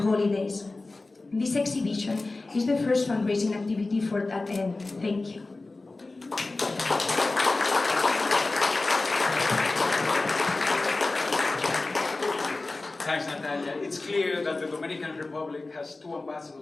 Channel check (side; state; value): right; quieter; 3.3 dB